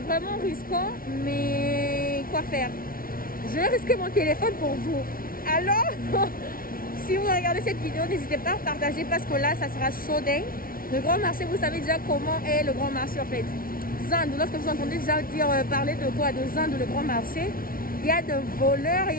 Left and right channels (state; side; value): late; right; 0.42 ms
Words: risquant, mais quoi faire? Je vais risquer mon téléphone pour vous. Alors, si vous regardez cette vidéo, n'hésitez pas à partager parce que là, ça sera chaud dingue. Le grand marché, vous savez déjà comment est le grand marché en fait. Zandu, lorsque vous entendez déjà dire parler de quoi? De Zandu, le grand marché. Il y a de voleurs,